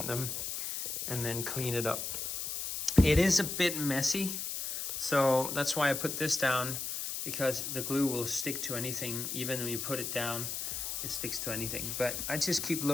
them, and then clean it up. It is a bit messy, so that's why I put this down, because the glue will stick to anything. Even when you put it down, it sticks to anything. But I just keep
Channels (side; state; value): left; noise; hiss, 3 dB below the sound